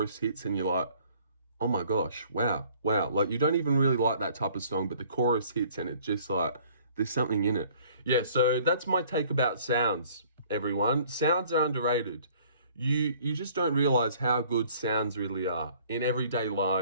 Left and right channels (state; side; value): inverted; both; correlation -0.55